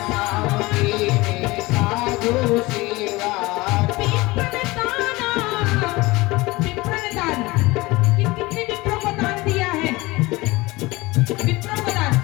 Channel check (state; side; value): quieter; right; 21.5 dB